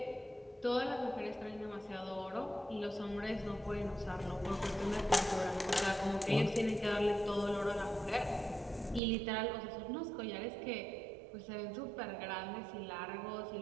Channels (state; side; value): drops out; left; at 9.0 s